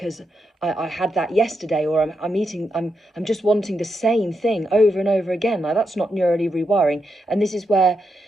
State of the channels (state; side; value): normal; both; correlation 0.84